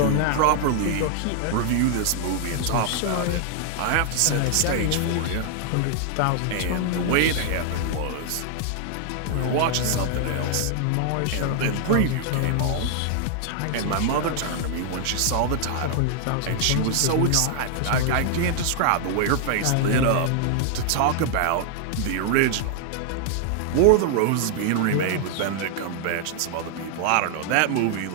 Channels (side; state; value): both; different; correlation 0.00